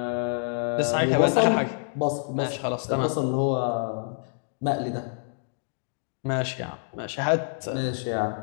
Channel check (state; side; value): silent; right; digital silence